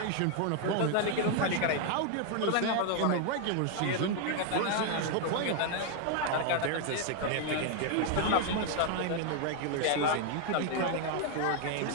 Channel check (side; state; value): both; different; correlation 0.00